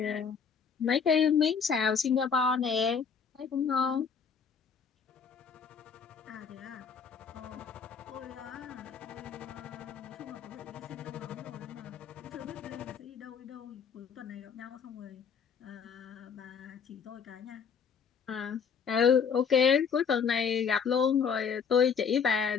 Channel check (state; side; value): quieter; right; 6.5 dB